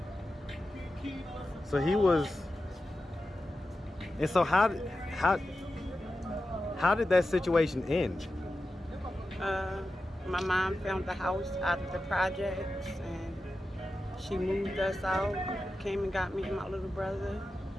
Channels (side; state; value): both; normal; correlation 0.92